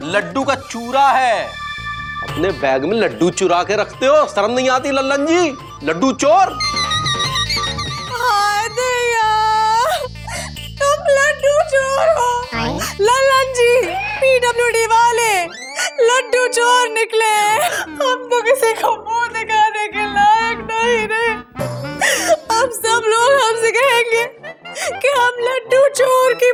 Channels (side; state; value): both; identical; correlation 1.00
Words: लड्डू का चूरा है। अपने बैग में लड्डू चुरा के रखते हो, शर्म नहीं आती लल्लन जी? लड्डू चोर। हाय दैया, तुम लड्डू चोर हो। लल्लन जी, पीडब्ल्यूडी वाले लड्डू चोर निकले। हम तो किसी को मुंह दिखाने के लायक नहीं रहे। अब सब लोग हमसे कहेंगे कि हम लड्डू चोर की